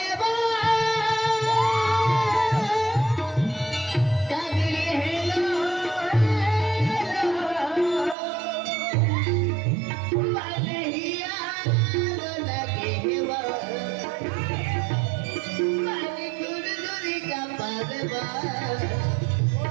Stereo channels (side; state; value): left; drops out; at 8.2 s